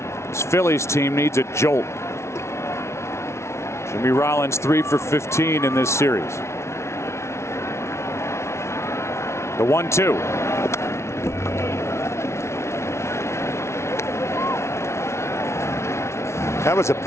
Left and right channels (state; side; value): late; right; 0.13 ms